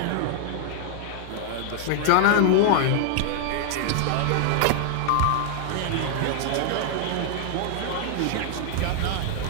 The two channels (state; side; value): different; both; correlation -0.01